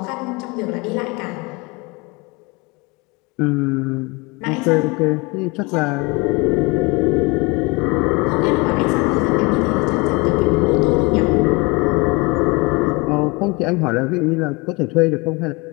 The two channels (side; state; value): right; quieter; 26.5 dB